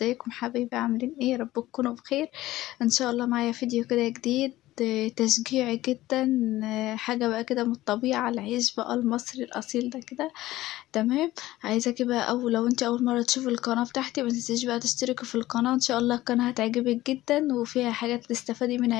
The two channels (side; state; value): right; quieter; 16.3 dB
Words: حبايبي؟ عاملين ايه؟ رب تكونوا بخير ان شاء الله. معايا فيديو كده جديد تشجيعي جدا، حاجة بقى كده من الطبيعة، العيش بقى المصري الأصيل ده كده. تمام. عايزاكي بقى، أو لو انت أول مرة تشوفي القناة بتاعتي، ما تنسيش بقى تشتركي في القناة. إن شاء الله القناة هتعجبك جدا وفيها حاجات تستفادي